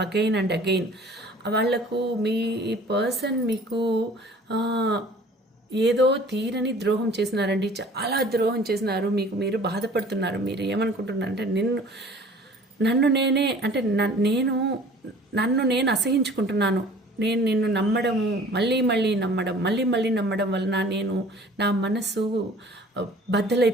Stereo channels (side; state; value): both; normal; correlation 0.49